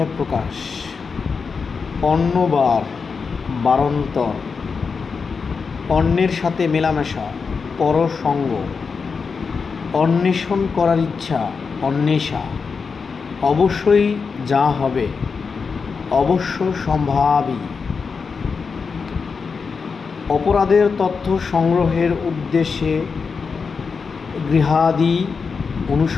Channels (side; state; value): right; quieter; 5.2 dB